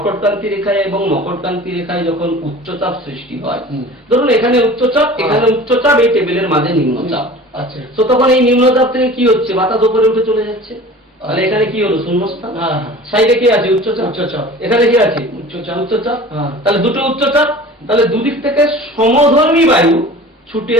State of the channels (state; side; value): normal; both; correlation 0.41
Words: রেখায় এবং মকরক্রান্তি রেখায় যখন উচ্চচাপ সৃষ্টি হয়, ধরুন এখানে উচ্চচাপ, এখানে উচ্চচাপ, এই টেবিলের মাঝে নিম্নচাপ। আচ্ছা। তো তখন এই নিম্নচাপ থেকে কি হচ্ছে, বাতাস উপরে উঠে চলে যাচ্ছে, তাহলে এখানে কি হলো, শূন্যস্থান। সাইডে কি আছে, উচ্চচাপ, এখানে কি আছে, উচ্চচাপ। তাহলে দুটো উচ্চচাপ, তাহলে দুদিক থেকে সমধর্মী বায়ু ছুটে